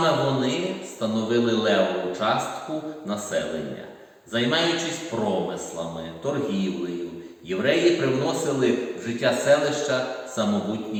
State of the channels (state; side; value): identical; both; correlation 1.00